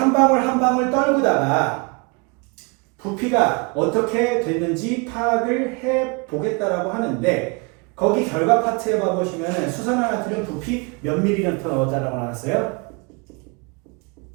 방울 한 방울 떨구다가 부피가 어떻게 됐는지 파악을 해보겠다라고 하는데 거기 결과 파트에 봐보시면 수산화나트륨 부피 몇 ml 넣었다라고 나왔어요?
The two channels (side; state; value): left; quieter; 30.9 dB